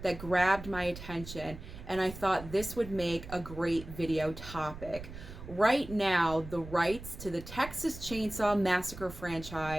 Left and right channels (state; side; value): noise; right; rumble, 13 dB below the sound